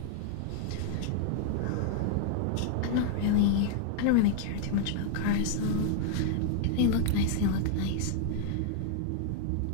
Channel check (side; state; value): both; different; correlation 0.00